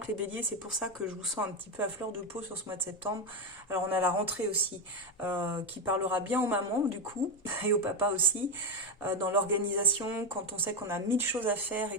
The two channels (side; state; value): both; normal; correlation 0.07